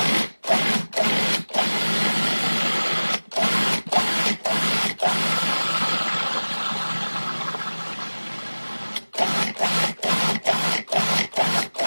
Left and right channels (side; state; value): both; inverted; correlation -1.00